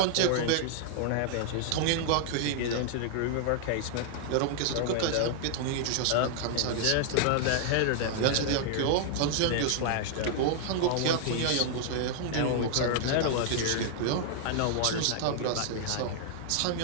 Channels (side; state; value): both; different; correlation -0.01